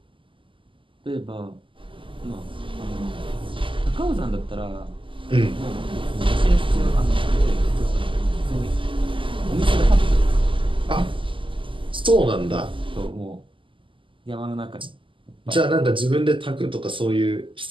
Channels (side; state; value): left; late; 0.25 ms